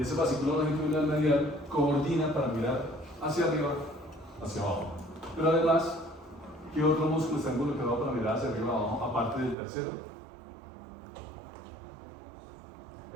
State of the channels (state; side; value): drops out; left; at 9.6 s